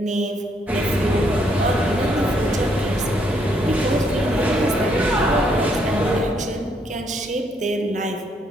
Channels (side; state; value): both; normal; correlation 0.71